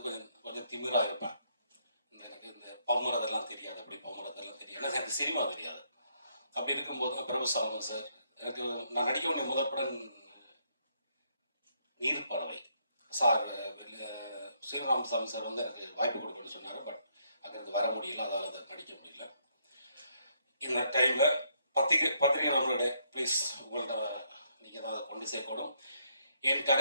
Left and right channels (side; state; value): both; inverted; correlation -0.73